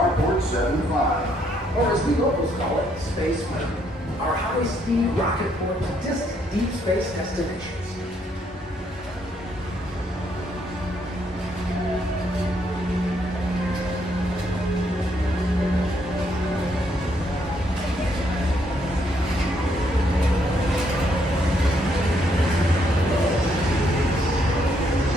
75. Or as the locals call it, Space Mountain. Our high-speed rocket port to distant deep space destinations.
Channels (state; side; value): normal; both; correlation 0.72